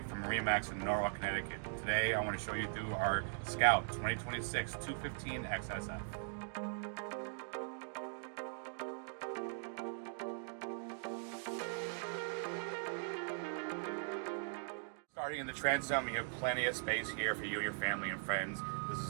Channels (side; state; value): left; silent; digital silence